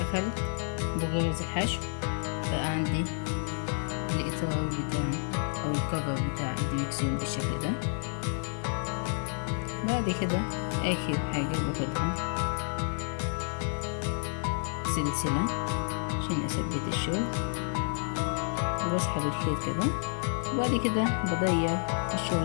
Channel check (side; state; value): right; silent; digital silence